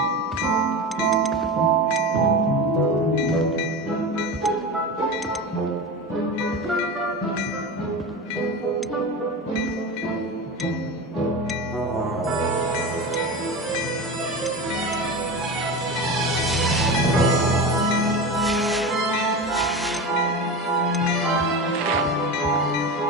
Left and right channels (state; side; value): normal; both; correlation 0.26